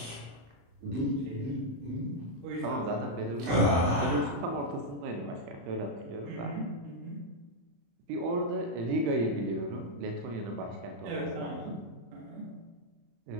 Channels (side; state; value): left; late; 35 ms